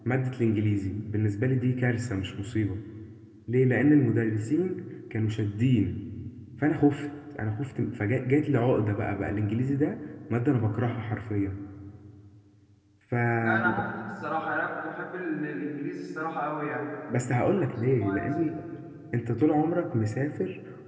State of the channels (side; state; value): both; identical; correlation 1.00